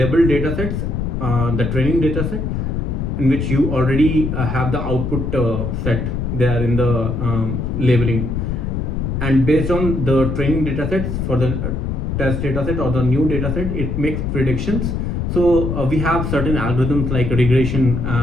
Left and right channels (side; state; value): left; noise; rumble, 2 dB below the sound